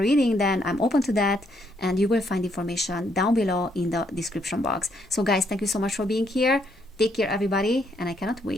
then I'm open to that, and you will find information down below in the description box. So guys, thank you so much for being here. Take care everybody, and I cannot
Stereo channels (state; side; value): normal; both; correlation 0.73